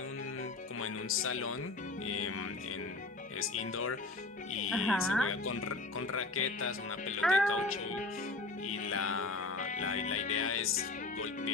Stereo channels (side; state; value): right; quieter; 3.2 dB